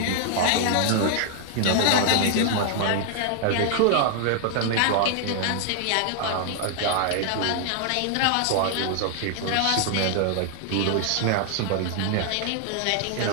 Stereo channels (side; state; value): both; different; correlation 0.00